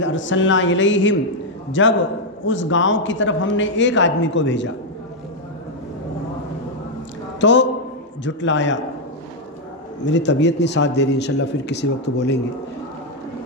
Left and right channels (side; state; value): both; normal; correlation 0.00